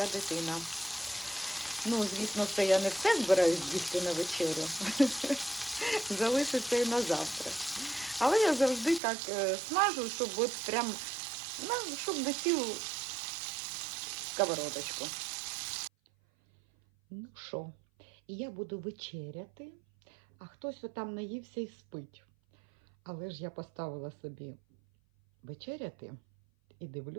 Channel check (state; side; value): drops out; left; at 9.0 s